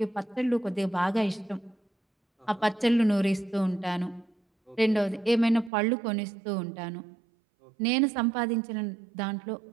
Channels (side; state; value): left; drops out; at 5.7 s